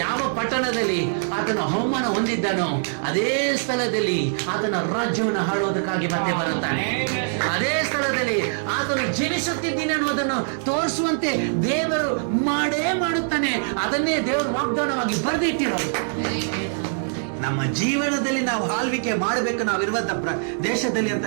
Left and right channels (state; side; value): silent; left; digital silence